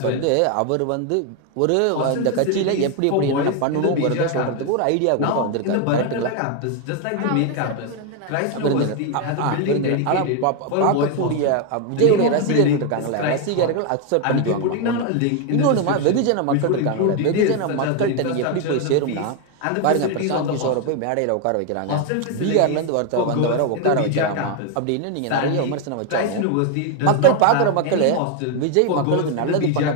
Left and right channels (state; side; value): different; both; correlation 0.01